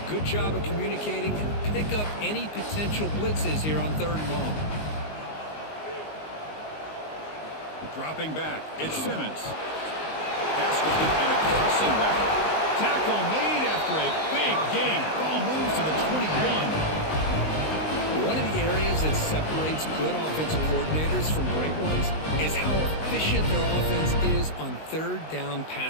good job of communicating, and pick up any potential blitzes here on 3rd and long. Dropping back, it's Simmons. Pass complete on a crossing route. Tackle made after a big gain. Ball moves to the 21. One of the areas that separates good offensive coordinators from great ones is how efficient their offense is on 3rd down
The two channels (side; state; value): right; late; 19 ms